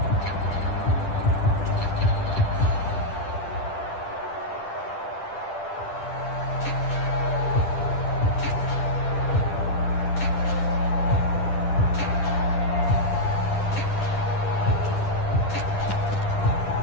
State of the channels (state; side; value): late; right; 10 ms